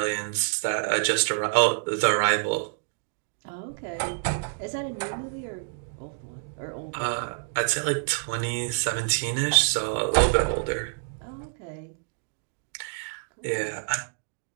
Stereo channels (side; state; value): left; silent; digital silence